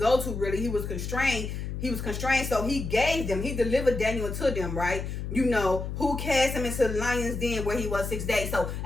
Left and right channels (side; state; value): left; noise; hum, 5 dB below the sound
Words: to, really. He was constrained, so he delivered Daniel to them, right? Who cast him into the lion's den where he was 6 days. So